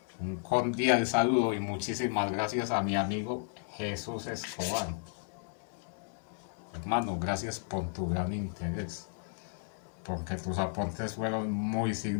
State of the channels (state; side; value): silent; right; 55 dB below the other